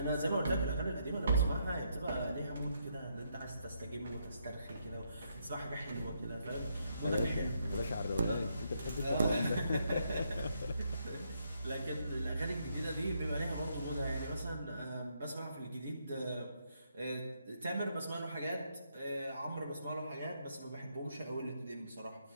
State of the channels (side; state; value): both; inverted; correlation -0.76